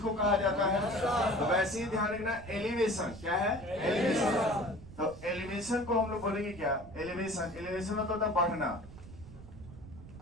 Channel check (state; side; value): noise; right; rumble, 16 dB below the sound